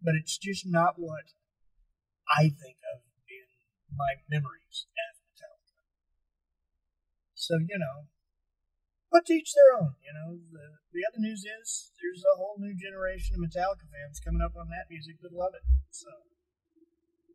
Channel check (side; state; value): both; identical; correlation 1.00